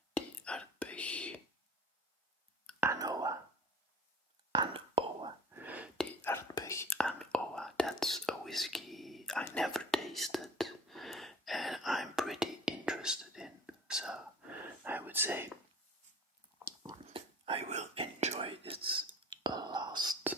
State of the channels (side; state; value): both; normal; correlation 0.44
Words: The Aardbeg Anoa. The Aardbeg Anoa. That's a whiskey I never tasted and I'm pretty interested in. So I would say I will enjoy this last